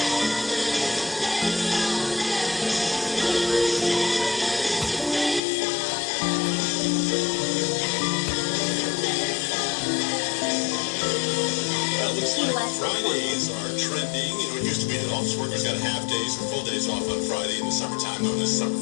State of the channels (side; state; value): right; drops out; at 5.4 s